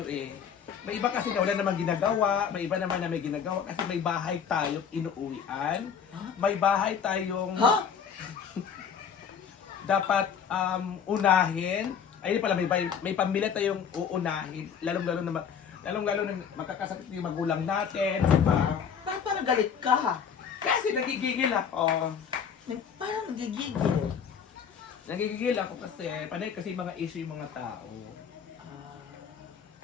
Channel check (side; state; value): right; quieter; 7.3 dB